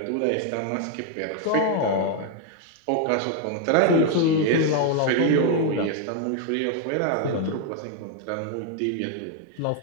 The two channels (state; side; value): different; both; correlation 0.00